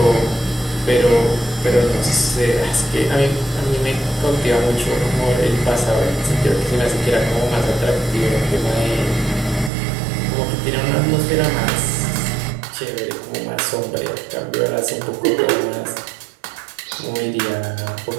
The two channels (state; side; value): drops out; left; at 9.7 s